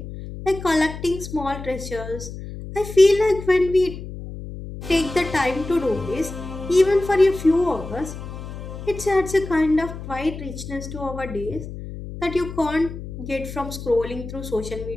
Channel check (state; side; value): noise; left; hum, 10 dB below the sound